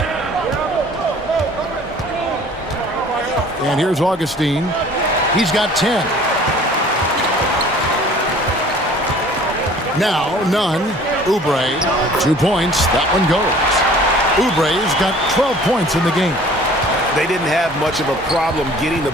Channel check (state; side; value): normal; both; correlation 0.50